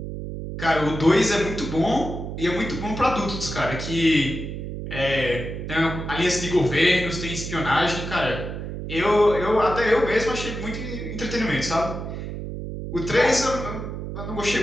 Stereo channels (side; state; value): right; noise; hum, 7 dB below the sound